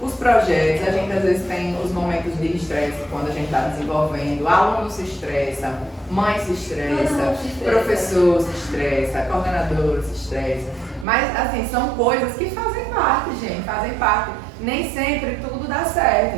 os projetos, a gente às vezes tem os momentos de estresse quando a gente está desenvolvendo, aluno se estressa, mãe se estressa, professor se estressa, coordenador se estressa. Mas assim, são coisas que fazem parte, gente, fazem parte. Nem sempre tudo dá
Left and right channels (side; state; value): left; drops out; at 11.1 s